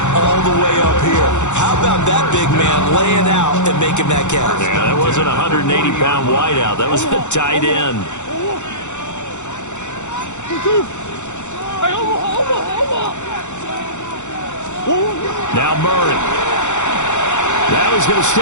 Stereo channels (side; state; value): right; late; 0.84 ms